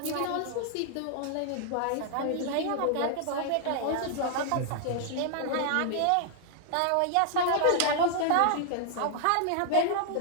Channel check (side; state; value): both; different; correlation 0.00